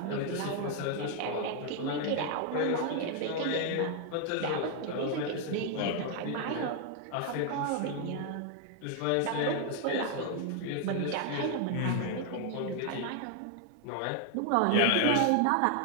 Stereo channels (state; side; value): different; both; correlation 0.00